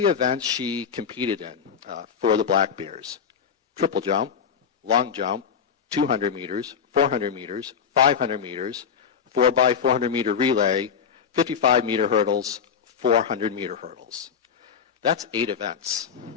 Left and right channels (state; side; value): quieter; right; 7.1 dB